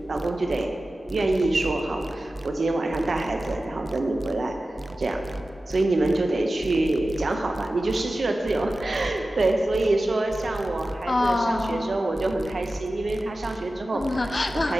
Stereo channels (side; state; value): both; normal; correlation 0.95